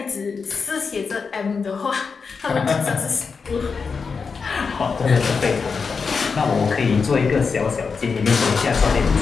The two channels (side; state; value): right; quieter; 5.2 dB